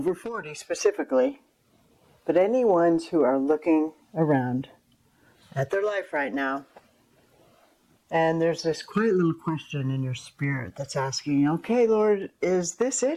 40 specifically, but any ones who are looking around at their life right now, and there's this quiet little question in your spirit that's asking, okay, Lord, is this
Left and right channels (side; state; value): both; identical; correlation 1.00